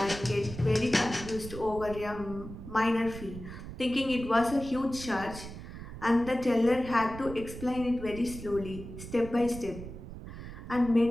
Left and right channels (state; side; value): noise; right; rumble, 11 dB below the sound